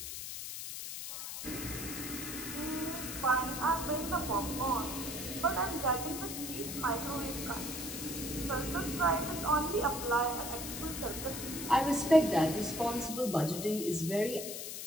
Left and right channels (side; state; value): left; noise; hiss, 6 dB below the sound